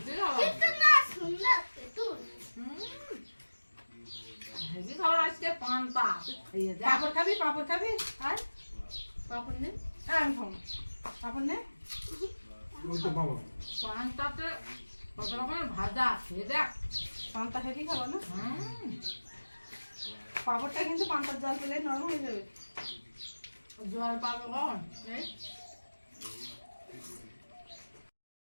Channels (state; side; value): inverted; both; correlation -1.00